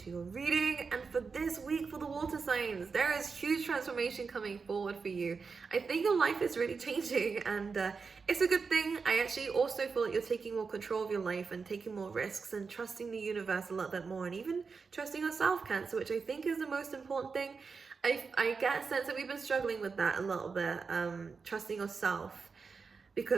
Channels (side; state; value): left; quieter; 5.0 dB